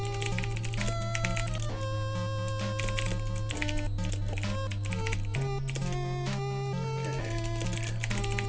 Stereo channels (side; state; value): both; identical; correlation 1.00